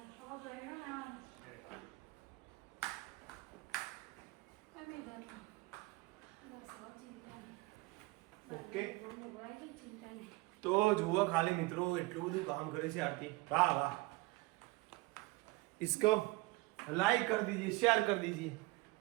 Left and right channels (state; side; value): quieter; left; 23.1 dB